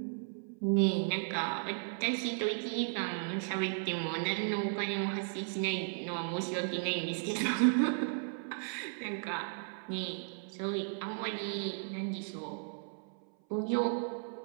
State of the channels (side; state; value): left; silent; 54 dB below the other